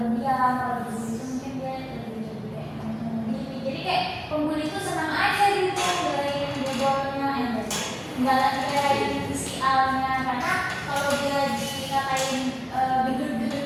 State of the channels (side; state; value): both; identical; correlation 1.00